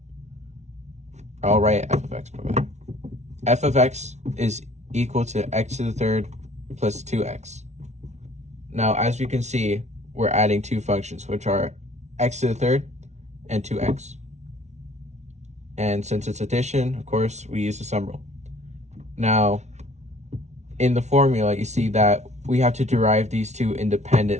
I'll write f of x. F of x is equal to x to the third plus 2x. Now, as you can see, we're adding 2 functions, which are x to the third and 2x. And since it's addition, of course, we use the sum rule. Now, in the formula, you see that we have to derive these 2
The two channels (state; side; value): late; left; 0.32 ms